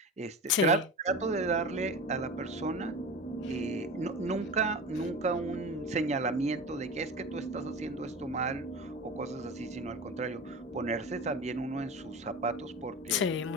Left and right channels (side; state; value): both; normal; correlation 0.30